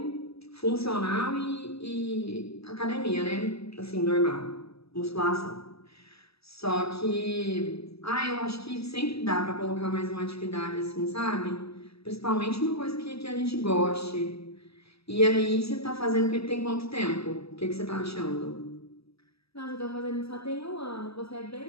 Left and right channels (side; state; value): right; late; 0.78 ms